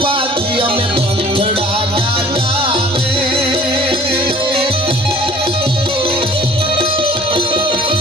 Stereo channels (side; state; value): both; normal; correlation 0.50